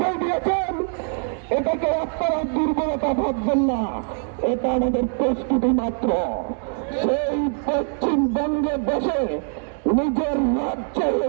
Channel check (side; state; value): left; silent; 56 dB below the other